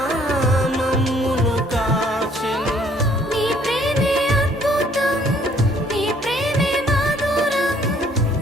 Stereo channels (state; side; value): normal; both; correlation 0.61